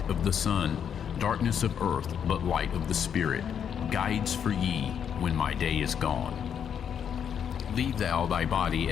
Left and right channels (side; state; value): right; quieter; 8.1 dB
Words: of the sun, darkness of earth, but light of the Spirit, guides for ye when my day is gone. Leave thou thy body